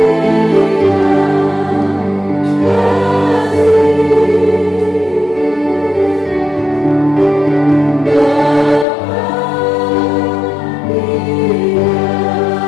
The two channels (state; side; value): drops out; right; at 8.8 s